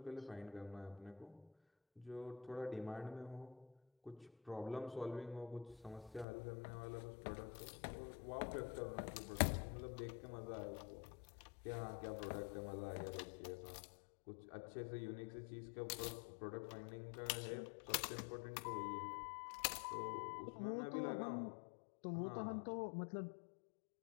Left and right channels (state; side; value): drops out; right; at 6.2 s